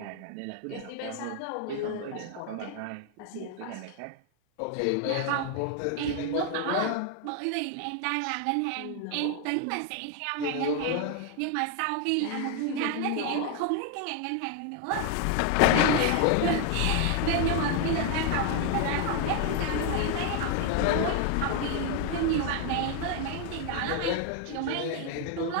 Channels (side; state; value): both; different; correlation 0.00